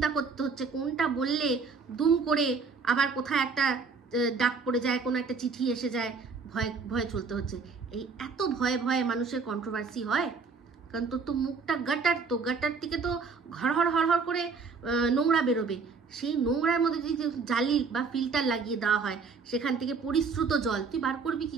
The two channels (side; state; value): left; quieter; 4.9 dB